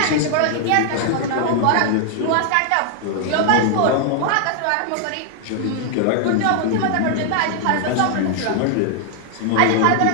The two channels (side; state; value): both; different; correlation 0.00